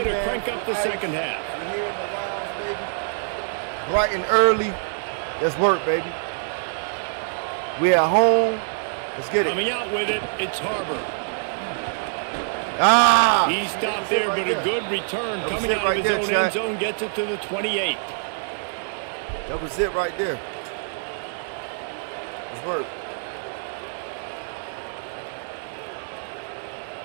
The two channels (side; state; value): left; silent; digital silence